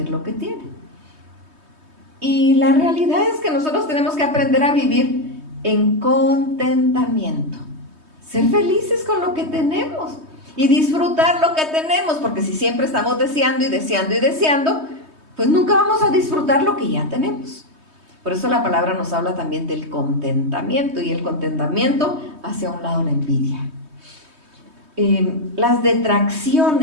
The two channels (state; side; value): late; left; 3.2 ms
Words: lo que tiene. Y la realidad es que nosotros tenemos que aprender a vivir en contentamiento, ser felices con lo que tenemos y disfrutar lo que tenemos, porque si siempre estamos deseando y deseando y deseando, pues nunca vamos a disfrutar lo que ya tenemos. Por eso la palabra nos habla también del contentamiento, y el contentamiento hace a un lado la envidia. Las